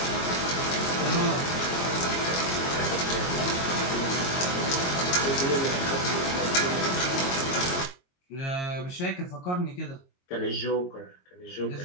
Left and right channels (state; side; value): late; right; 22 ms